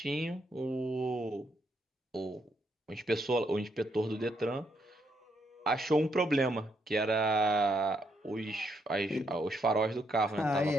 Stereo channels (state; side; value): normal; both; correlation 0.76